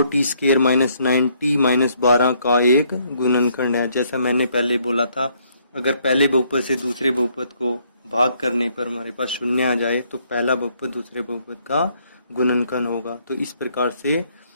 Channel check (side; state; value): both; inverted; correlation -0.69